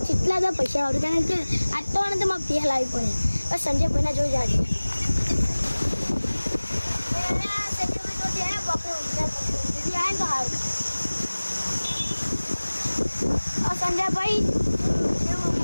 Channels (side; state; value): both; inverted; correlation -1.00